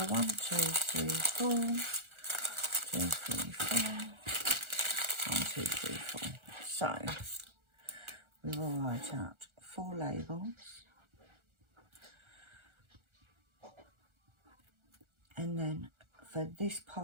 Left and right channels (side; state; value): left; late; 1.4 ms